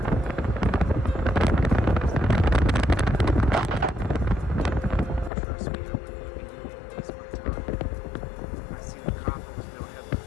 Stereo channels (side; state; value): right; drops out; at 5.3 s